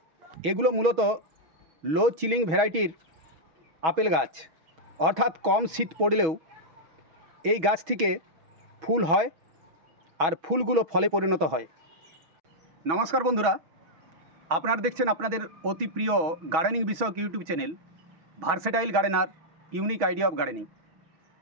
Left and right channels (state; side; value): late; left; 6.2 ms